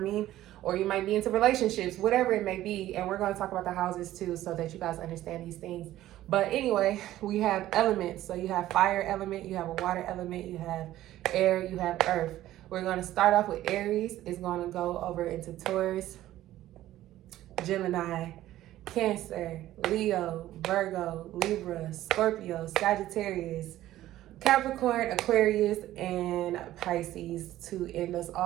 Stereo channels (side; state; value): left; quieter; 14.2 dB